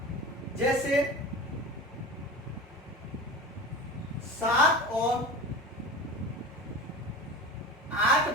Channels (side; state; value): both; normal; correlation 0.31